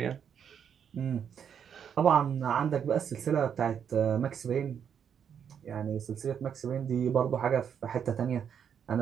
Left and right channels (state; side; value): quieter; left; 8.0 dB